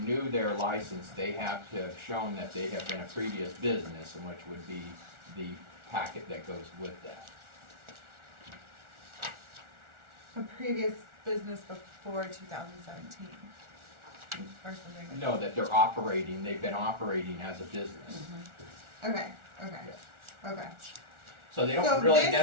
their license, they have to have shown that they have been a previous business, and which would be the packet that goes with that. a previous business before 2017 or something. No, that they're operating, they've been operating as a business. Okay. Okay. So they So don't really this-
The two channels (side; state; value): left; late; 1.4 ms